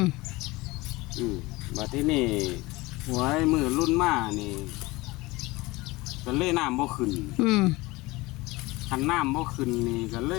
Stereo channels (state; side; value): quieter; right; 21.5 dB